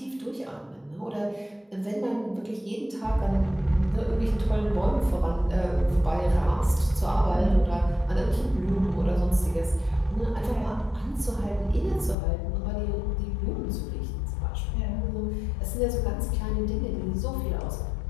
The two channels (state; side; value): drops out; right; at 12.2 s